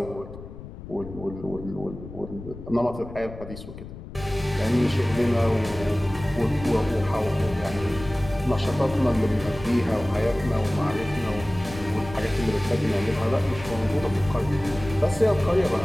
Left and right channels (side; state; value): left; noise; rumble, 13 dB below the sound